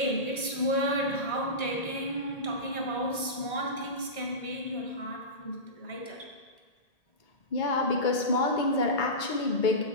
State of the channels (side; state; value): right; late; 1.8 ms